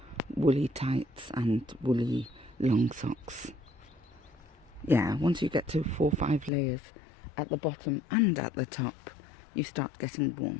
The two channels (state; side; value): drops out; right; at 6.5 s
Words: woolly tights and woolly long socks. Yeah, once you get to 4 or 5 layers at the bottom and at the top, you start getting